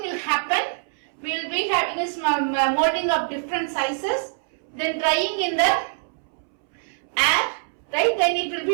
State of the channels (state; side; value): silent; left; 63 dB below the other